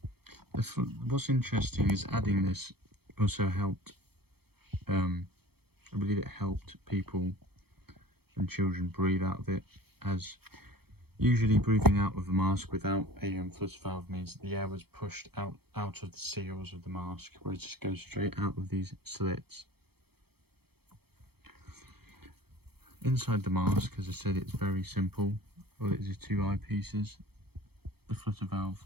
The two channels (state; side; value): late; left; 0.96 ms